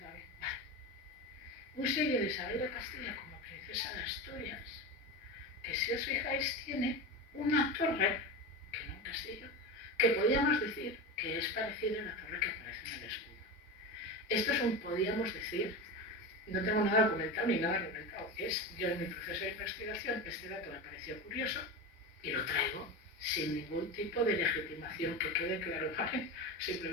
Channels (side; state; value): both; normal; correlation 0.23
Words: bien, vale, un sello de Isabel de Castilla como princesa de Asturias, que si os fijáis tiene una torre, que no un castillo, que podríamos decir que es parecida a la torre que aparece en el escudo. Esto es un podíamos decir, no tengo nada documentado ni nada argumentado. Yo en mi proceso de investigación, este dato me pareció curioso y lo traigo sin ningún tipo de legitimación, que quede claro, ¿vale?